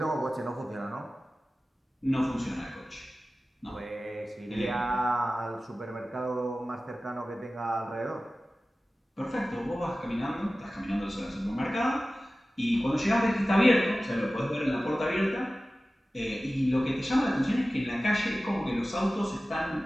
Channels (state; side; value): normal; both; correlation 0.96